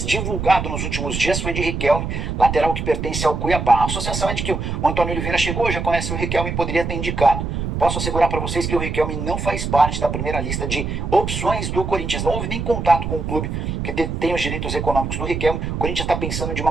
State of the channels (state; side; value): noise; right; rumble, 3 dB below the sound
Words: divulgado nos últimos dias foi de Riquelme, lateral que pertence ao Cuiabá. A associação é de que o Antônio Oliveira chegou, já conhece o Riquelme e poderia ter indicado. Posso assegurar para vocês que o Riquelme não faz parte da primeira lista de opções do Corinthians. Não houve nem contato com o clube que tem os direitos econômicos do Riquelme. O Corinthians está pensando de uma